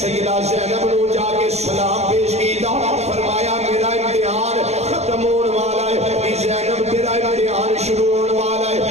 زینب نے جا کے سلام پیش کیتا، فرمایا میرا امتحان ختم ہونے والا ہے، زینب تیرا امتحان شروع ہونے والا ہے،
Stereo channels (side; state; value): left; late; 0.31 ms